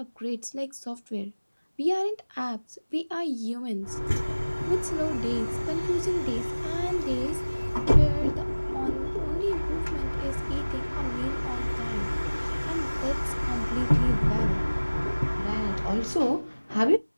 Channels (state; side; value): inverted; both; correlation -1.00